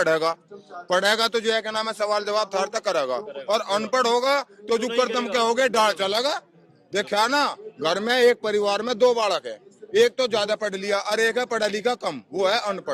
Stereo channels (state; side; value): identical; both; correlation 1.00